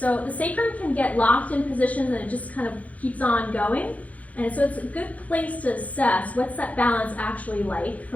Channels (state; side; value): late; right; 0.070 ms